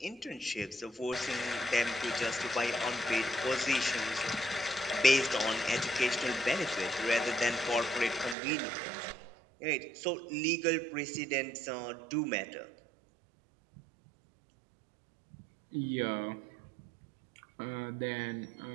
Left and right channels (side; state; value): left; drops out; at 8.3 s